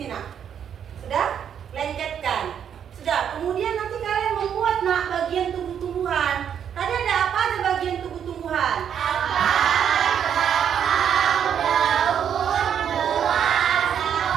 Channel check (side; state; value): left; quieter; 8.6 dB